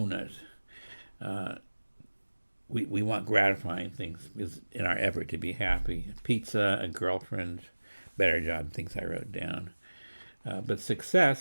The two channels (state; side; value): inverted; both; correlation -1.00